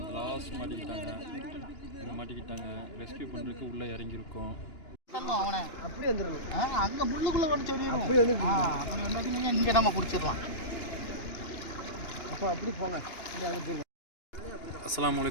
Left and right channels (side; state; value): right; late; 2.9 ms